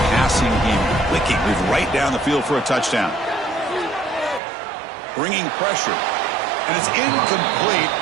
passing game clicking. Moved right down the field for a touchdown. Bringing pressure. And it's incomplete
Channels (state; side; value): drops out; left; at 4.4 s